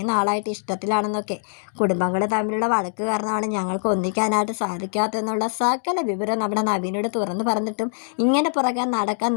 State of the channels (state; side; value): silent; right; digital silence